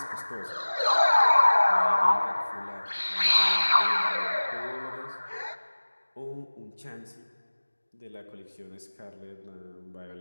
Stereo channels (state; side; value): inverted; both; correlation -1.00